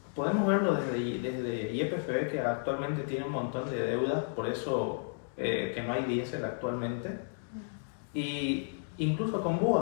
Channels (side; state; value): right; silent; digital silence